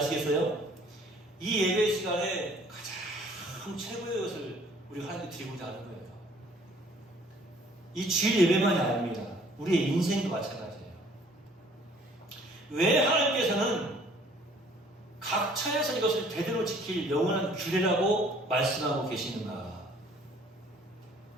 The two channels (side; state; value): both; normal; correlation 0.56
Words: 이 예배 시간에 가장 최고의 것을 우리가 하나님께 드리고자 하는 거예요. 이 주일 예배만이 아닙니다. 우리의 인생도 마찬가지예요. 왜 하나님께서는 각처에서 이것을 대대로 지킬 영원한 규례라고 말씀하고 계시는가?